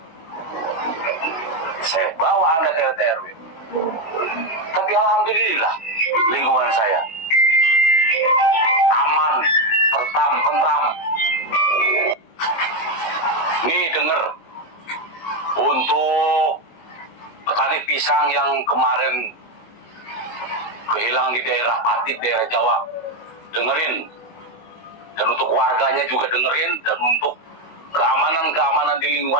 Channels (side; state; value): right; late; 18 ms